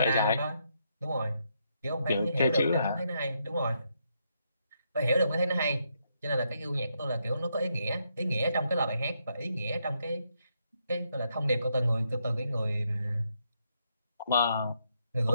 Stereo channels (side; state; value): both; inverted; correlation -0.77